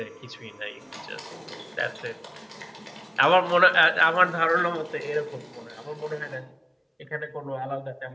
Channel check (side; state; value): both; identical; correlation 1.00